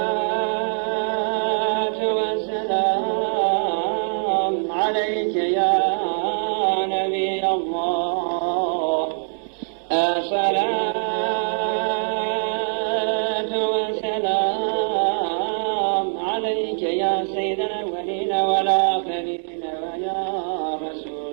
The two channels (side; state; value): left; silent; digital silence